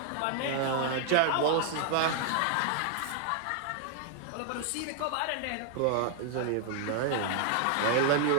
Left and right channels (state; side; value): different; both; correlation 0.00